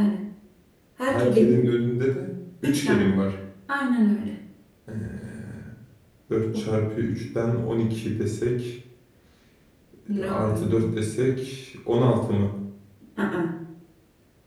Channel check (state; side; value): identical; both; correlation 1.00